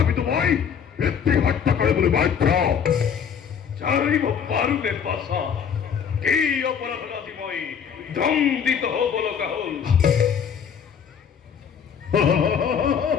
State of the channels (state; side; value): quieter; right; 7.4 dB